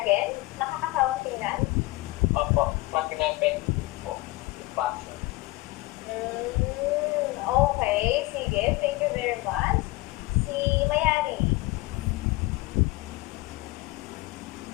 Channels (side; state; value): right; quieter; 20.9 dB